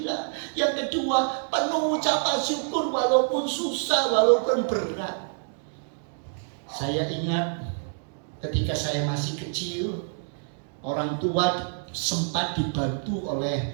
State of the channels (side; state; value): left; silent; digital silence